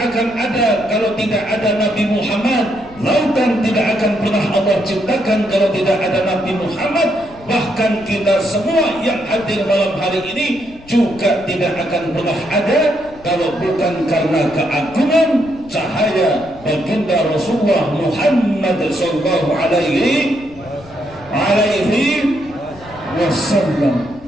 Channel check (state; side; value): noise; left; rumble, 22 dB below the sound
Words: akan ada kalau tidak ada Nabi Muhammad. Lautan tidak akan pernah Allah ciptakan kalau tidak ada Nabi Muhammad. Bahkan kita semua yang hadir malam hari ini juga tidak akan pernah ada kalau bukan karena keagungan cahaya baginda Rasulullah Muhammad sallallahu alaihi wasallam.